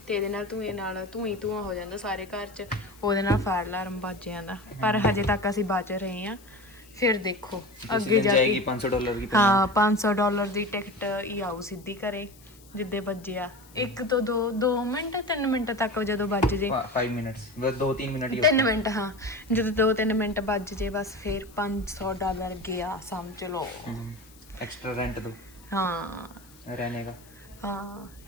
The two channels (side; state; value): left; noise; hiss, 25 dB below the sound